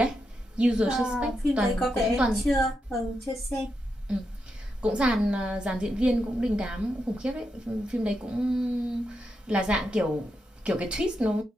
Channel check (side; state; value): both; normal; correlation 0.85